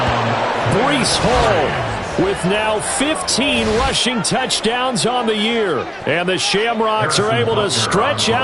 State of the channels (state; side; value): identical; both; correlation 1.00